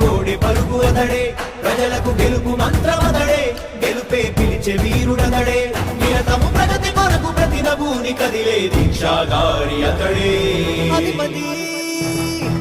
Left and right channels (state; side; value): identical; both; correlation 1.00